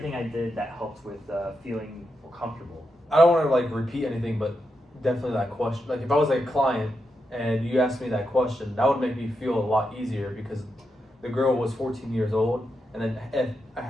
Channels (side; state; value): both; normal; correlation 0.85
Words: I did that helped with feeling more comfortable? I don't want to like repeat anything, but definitely that question. Like if I was like a client and you asked me that question, that would make me feel a lot easier because the girl was 14 years old. And then